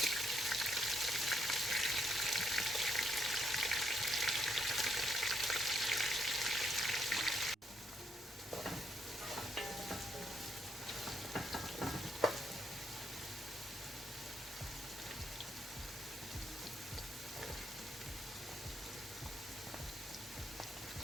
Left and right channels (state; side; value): normal; both; correlation 0.76